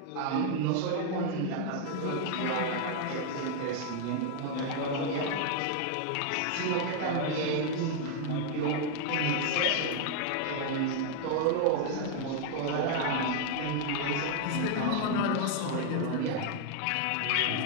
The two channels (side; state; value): both; different; correlation 0.00